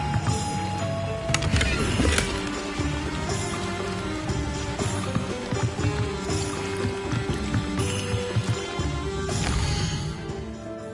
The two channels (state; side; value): identical; both; correlation 1.00